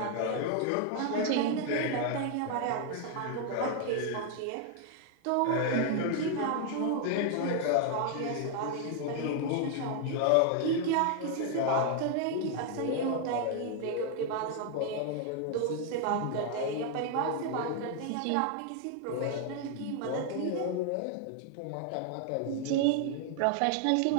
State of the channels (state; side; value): different; both; correlation 0.00